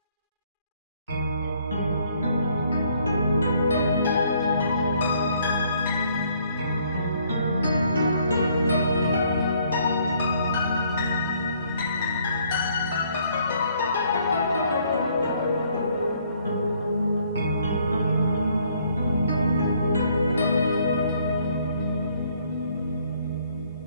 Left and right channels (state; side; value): inverted; both; correlation -0.65